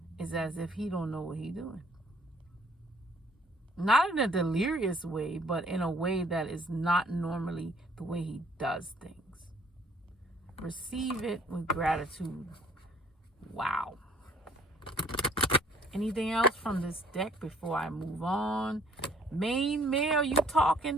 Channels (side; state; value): both; normal; correlation 0.59